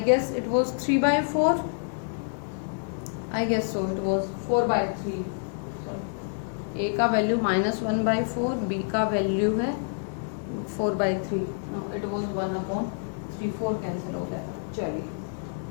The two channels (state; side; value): silent; right; digital silence